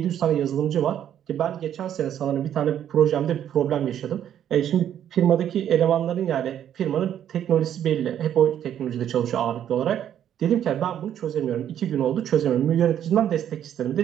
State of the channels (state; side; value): quieter; left; 10.2 dB